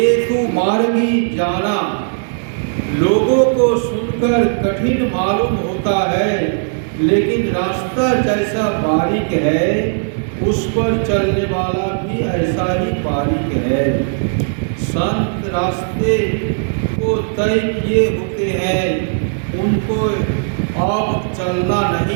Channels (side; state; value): left; silent; digital silence